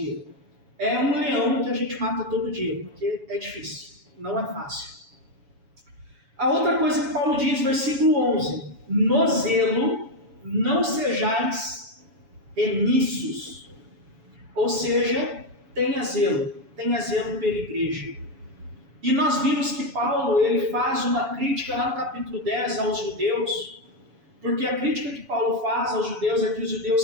É um leão que a gente mata todo dia, porque é difícil, não é fácil. A outra coisa que Paulo diz, versículo 11: no zelo não sejais remissos, ou seja, tenha zelo pela igreja. E nós vimos que Paulo ele faz uma crítica lá no capítulo 10 aos judeus, porque a crítica que Paulo faz aos judeus é que os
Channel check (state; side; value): late; left; 7.1 ms